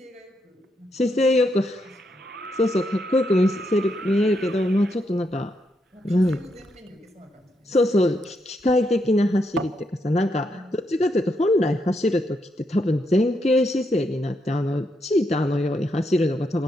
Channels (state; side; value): normal; both; correlation 0.80